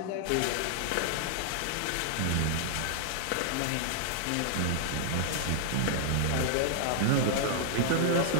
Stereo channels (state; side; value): different; both; correlation -0.01